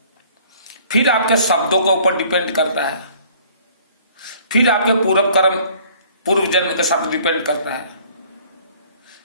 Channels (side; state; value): both; inverted; correlation -0.55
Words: फिर आपके शब्दों के ऊपर डिपेंड करता है, फिर आपके पूर्व कर्म पूर्व जन्म के साथ डिपेंड करता है,